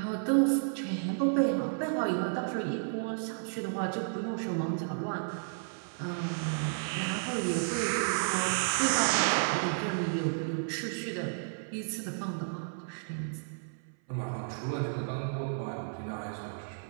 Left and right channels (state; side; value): silent; left; 56 dB below the other